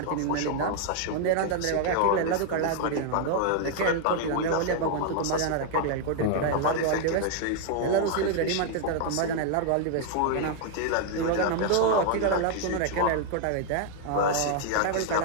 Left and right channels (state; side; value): different; both; correlation 0.00